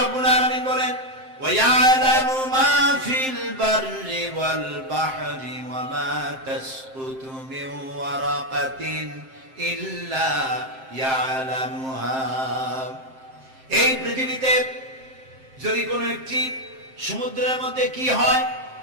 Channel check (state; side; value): late; left; 7.6 ms